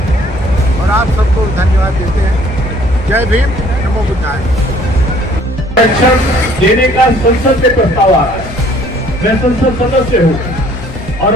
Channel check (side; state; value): both; normal; correlation 0.58